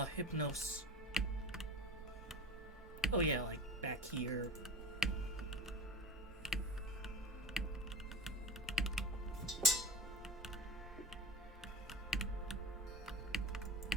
Hypnos? Oh yeah, like back here.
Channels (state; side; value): normal; both; correlation 0.35